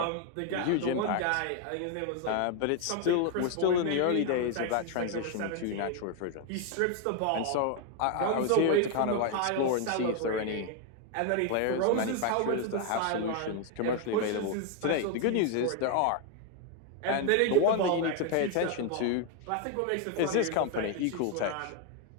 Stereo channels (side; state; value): both; different; correlation 0.01